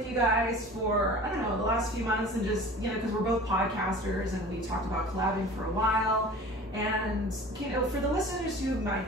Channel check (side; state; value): both; normal; correlation 0.41